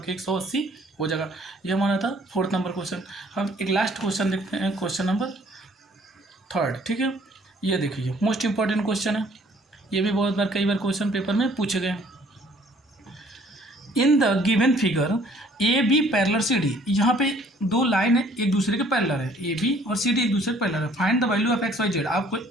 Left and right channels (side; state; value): both; normal; correlation 0.58